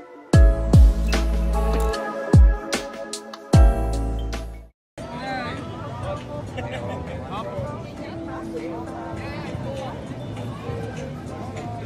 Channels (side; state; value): both; identical; correlation 1.00